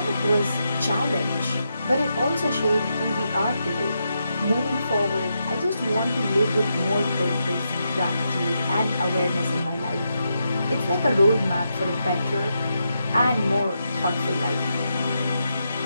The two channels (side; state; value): both; inverted; correlation -0.84